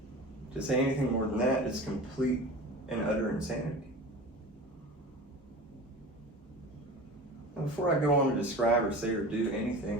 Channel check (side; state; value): both; normal; correlation 0.34